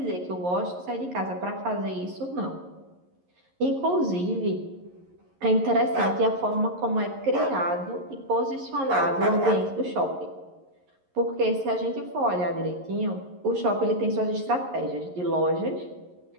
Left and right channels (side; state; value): left; late; 11 ms